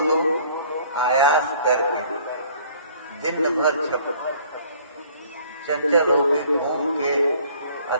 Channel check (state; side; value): inverted; both; correlation -0.56